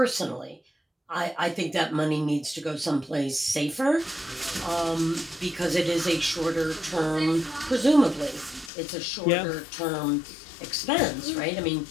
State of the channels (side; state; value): right; drops out; at 8.7 s